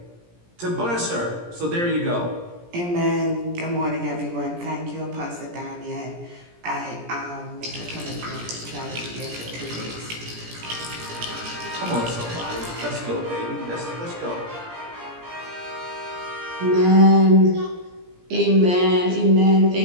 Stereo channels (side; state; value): left; late; 17 ms